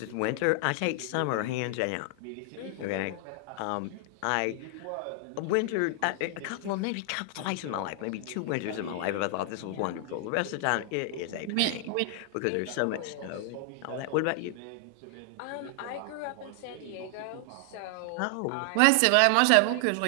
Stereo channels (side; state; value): both; different; correlation 0.00